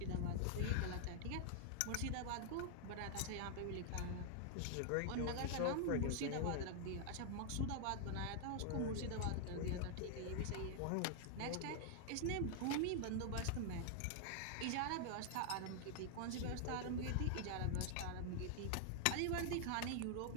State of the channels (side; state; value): both; different; correlation 0.00